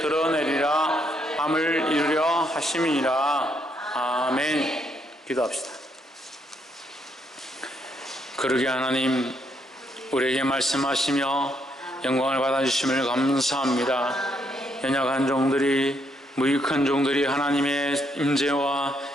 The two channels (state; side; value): normal; both; correlation 0.74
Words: 함을 이루려 하심이니라. 아멘. 기도합시다. 그러게 하나님, 우리에게 말씀하시며 영광을 받아주심을 감사합니다. 연약한 종들이, 무익한 종들이 하나님의 임재와